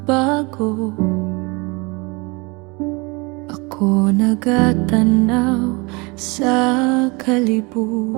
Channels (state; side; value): quieter; left; 27.6 dB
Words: bago, ako nagatanaw sa